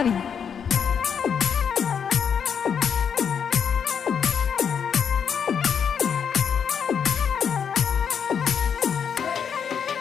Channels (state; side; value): quieter; right; 7.3 dB